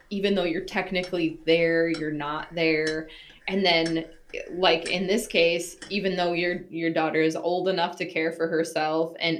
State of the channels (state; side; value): identical; both; correlation 1.00